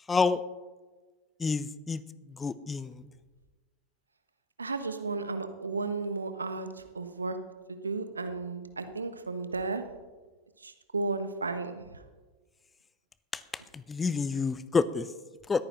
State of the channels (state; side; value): normal; both; correlation 0.28